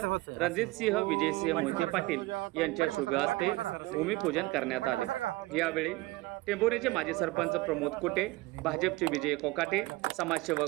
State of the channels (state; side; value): quieter; left; 21.1 dB